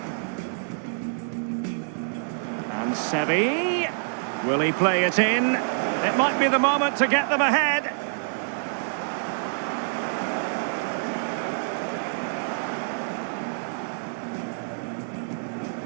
And Seri, will he play it in? It might be the moment to get them ahead.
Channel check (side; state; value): left; silent; 61 dB below the other